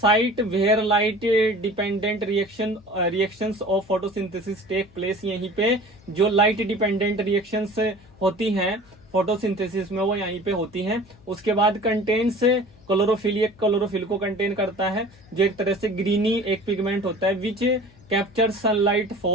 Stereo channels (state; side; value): noise; left; hum, 27 dB below the sound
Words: where light dependent reactions of photosynthesis take place, यहीं पे जो light dependent reactions होती हैं फोटोसिंथेसिस में वो यहीं पे होती हैं। उसके बाद कंटेन्स क्लोरोफिल, एक क्लोरोफिल को कंटेन करता है जो एक तरह से ग्रीनी एक पिगमेंट होता है विच कैप्चर सनलाइट